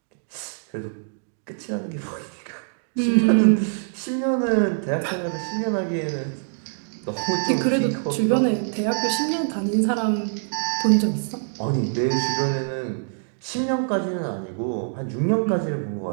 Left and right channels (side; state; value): left; silent; digital silence